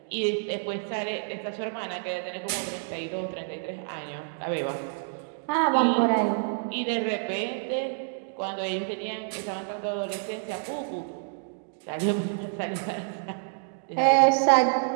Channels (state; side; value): silent; left; digital silence